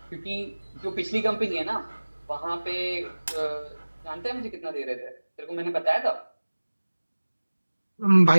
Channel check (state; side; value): inverted; both; correlation -1.00